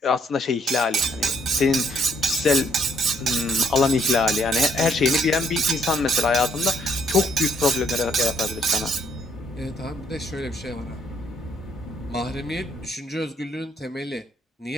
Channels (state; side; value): normal; both; correlation 0.68